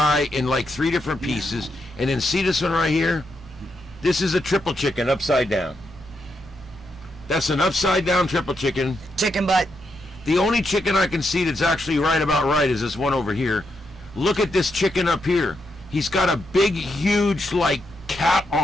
in like 3 different pieces. And then see this one right here? This is a triple chicken upside down. That's an upside down triple chicken. Chicken butt. The only chicken I can see that's actually right about right is this one over here. Look at this chicken up here. He's got a big, huge, like, cat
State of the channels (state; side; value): normal; both; correlation 0.82